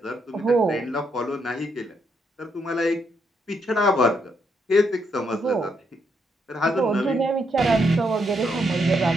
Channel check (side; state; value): both; normal; correlation 0.77